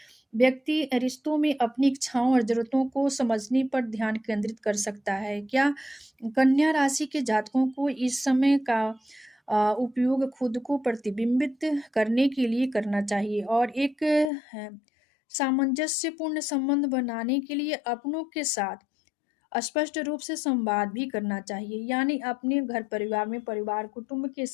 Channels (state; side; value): drops out; right; at 14.3 s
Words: व्यक्ति रिश्तों में अपनी इच्छाओं और ज़रूरतों को समझने पर ध्यान केंद्रित कर सकता है। क्या कन्या राशि के जातकों को इस समय का उपयोग खुद को प्रतिबिंबित करने के लिए करना चाहिए, और एक सामंजस्यपूर्ण संबंध बनाने के लिए अपनों के साथ स्पष्ट रूप से संवाद भी करना चाहिए। यानी अपने घर परिवार में, परिवार कुटुंब के